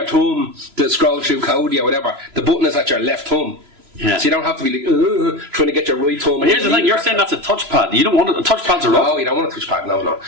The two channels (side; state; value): left; late; 3.0 ms